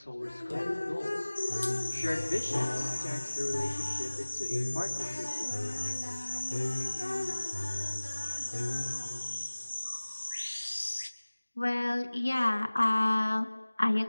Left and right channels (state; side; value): inverted; both; correlation -1.00